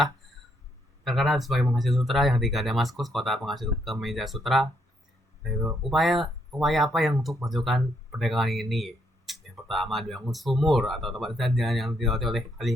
terkenal sebagai penghasil sutra, yang ketiga Damaskus, kota penghasil kemeja sutra. Yaitu upaya apa yang untuk memajukan perdagangan ini? Yang pertama dibangun sumur atau tempat jalan yang dilewati oleh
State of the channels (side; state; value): both; normal; correlation 0.74